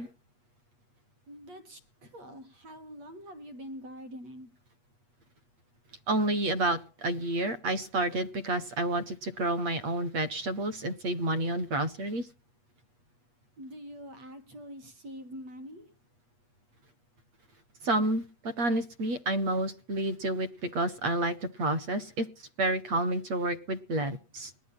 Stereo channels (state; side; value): late; left; 8.3 ms